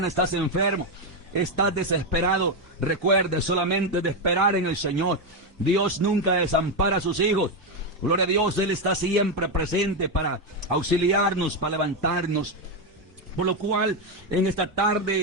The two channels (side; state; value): both; normal; correlation 0.07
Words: estás enfermo, estás desesperado. Recuerde solamente de esperar en el Señor. Dios nunca desampara a sus hijos. Gloria a Dios, Él está siempre presente para auxiliarnos, para levantarnos. Por lo cual, en esta